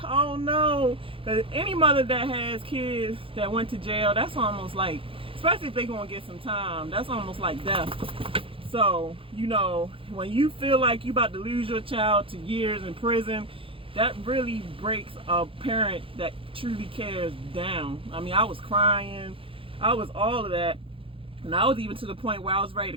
oh no. Because any mother that has kids that went to jail, that's almost like, especially if they're going to get some time, that's almost like death. So, you know, when you feel like you about to lose your child to years in prison, that really breaks a parent that truly cares down. I mean, I was crying, I was all of that. And I was even to the point where I was ready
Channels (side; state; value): left; late; 0.26 ms